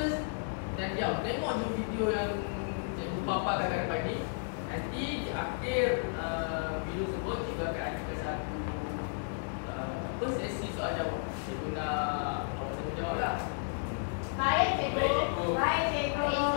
dan diam. Tengok je video yang cikgu paparkan kat depan ni. Nanti di akhir video tersebut, cikgu akan adakan satu sesi soal jawab. Cikgu nak awak semua jawab lah. Baik cikgu. Baik cikgu. Baik cikgu.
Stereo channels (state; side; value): silent; right; 56 dB below the other